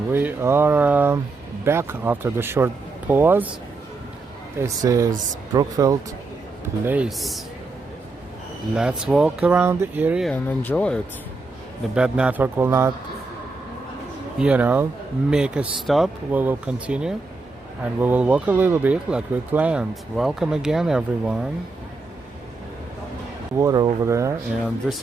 We are back after the short pause. This is Brookfield Place. Let's walk around the area and enjoy it. The bad network will not, make a stop. We will continue and we will walk a little bit like we planned. Welcome again, everyone. Water over there, and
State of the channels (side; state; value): left; quieter; 3.5 dB